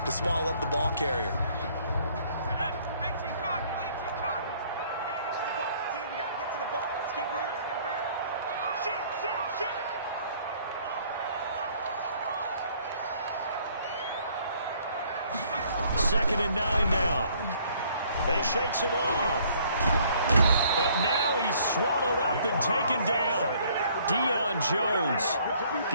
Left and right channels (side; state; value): both; inverted; correlation -0.61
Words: swallow up the ball carrier. Second and 9 now. They shakes him off. But now he's swallowed up and taken down. Deion Jones.